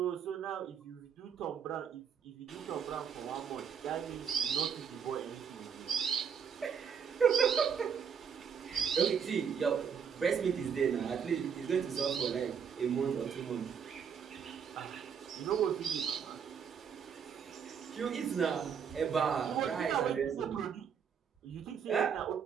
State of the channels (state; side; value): quieter; left; 7.2 dB